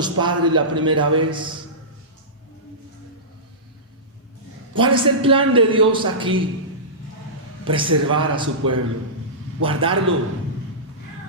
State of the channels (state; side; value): normal; both; correlation -0.18